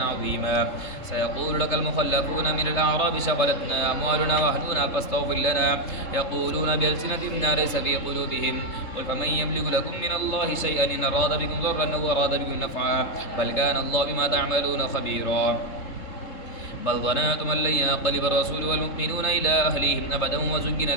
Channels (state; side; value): late; right; 3.7 ms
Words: عظيما سيقول لك المخلفون من الأعراب شغلتنا أموالنا وأهلنا فاستغفر لنا يقولون بألسنتهم ما ليس في قلوبهم قل فمن يملك لكم من الله شيئا إن أراد بكم ضرا أو أراد بكم نفعا بل كان الله بما تعملون خبيرا بل ظننتم أن لن ينقلب الرسول والمؤمنون إلى أهليهم أبدا وزين